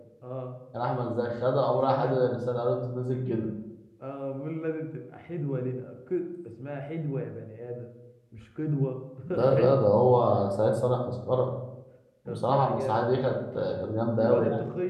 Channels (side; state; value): both; identical; correlation 1.00